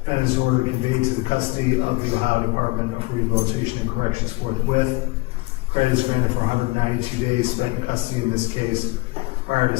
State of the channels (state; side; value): quieter; right; 23.3 dB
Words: Defendant is ordered conveyed to the custody of the Ohio Department of Rehabilitation and Corrections forthwith. Credit is granted for 192 days spent in custody in this case, prior to